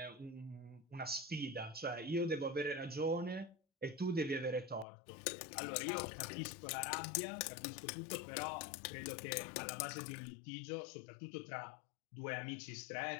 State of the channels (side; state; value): right; drops out; at 4.9 s